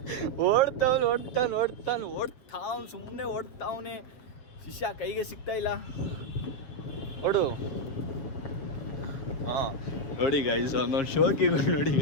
ಓಡ್ತಾವ್ನು ಸುಮ್ಮನೆ ಓಡ್ತಾವನೆ. ಶಿಷ್ಯ ಕೈಗೆ ಸಿಗ್ತಾ ಇಲ್ಲ. ಓಡು. ಹಾಂ ನೋಡಿ ಗೈಸ್, ಒಂದೊಂದು ಶೋಕಿಗಳು ನೋಡಿ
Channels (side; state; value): right; late; 7.3 ms